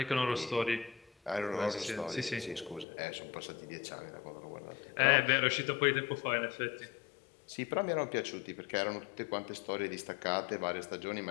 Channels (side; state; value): right; drops out; at 2.9 s